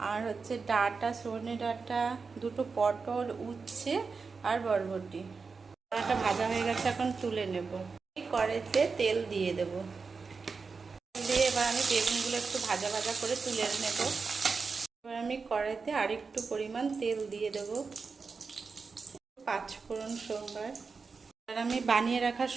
আর ডাঁটা, সজনে ডাঁটা, দুটো পটল, উচ্ছে আর বরবটি। ডাঁটা ভাজা হয়ে গেছে, এখন তুলে নেব। কড়াইতে তেল দিয়ে দেব, এবার আমি বেগুনগুলো একটু ভাজা ভাজা করে তুলে নেব। এবার আমি কড়াইতে আরেকটু পরিমাণ তেল দিয়ে দেব, 5 ফোড়ন সোমবার। আর আমি বানিয়ে রাখা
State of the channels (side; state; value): left; quieter; 4.8 dB